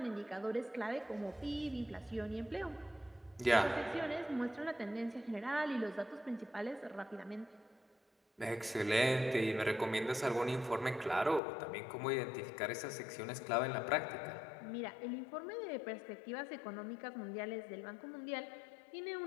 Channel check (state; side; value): drops out; right; at 11.4 s